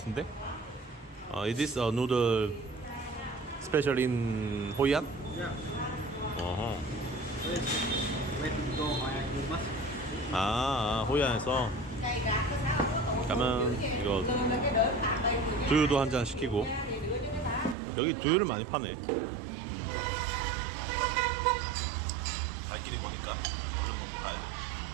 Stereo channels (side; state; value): left; drops out; at 17.8 s